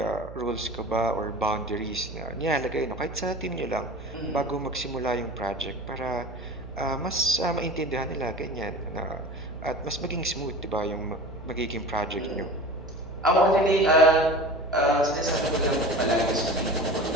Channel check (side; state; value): right; noise; hum, 14 dB below the sound